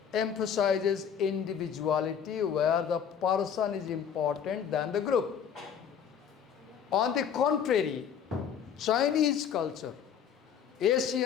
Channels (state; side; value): quieter; right; 7.9 dB